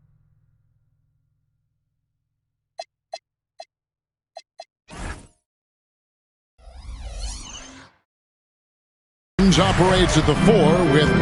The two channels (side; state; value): both; identical; correlation 1.00